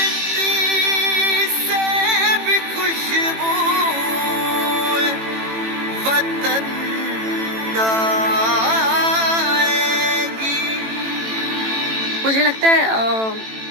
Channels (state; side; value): late; left; 18 ms